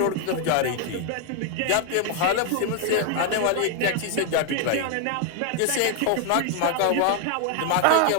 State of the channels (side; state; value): both; different; correlation 0.00